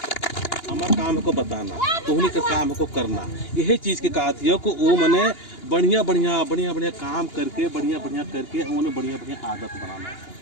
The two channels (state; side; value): late; right; 2.8 ms